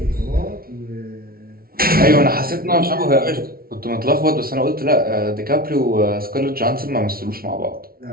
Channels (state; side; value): late; left; 0.43 ms